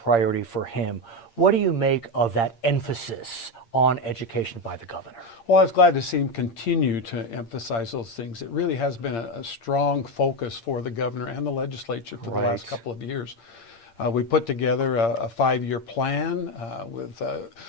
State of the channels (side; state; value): right; late; 8.7 ms